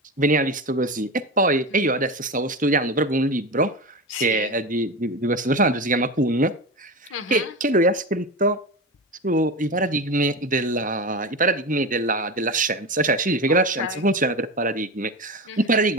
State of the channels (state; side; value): normal; both; correlation 0.23